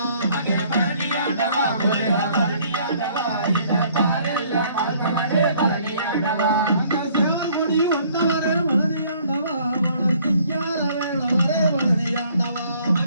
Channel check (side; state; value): both; inverted; correlation -0.60